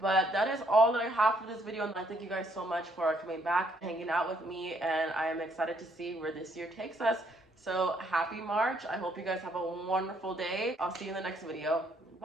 that is all that I have for this video, and I thank you guys so much for coming back, hanging out with me, and I am excited to see where this year takes us. So happy March. I hope you guys have a wonderful day. I'll see you in the next video.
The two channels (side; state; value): both; normal; correlation 0.69